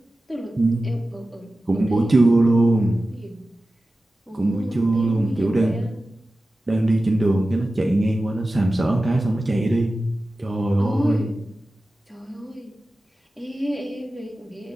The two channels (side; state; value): both; normal; correlation 0.95